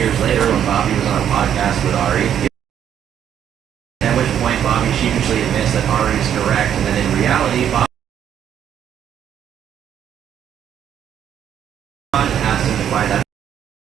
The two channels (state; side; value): quieter; left; 9.5 dB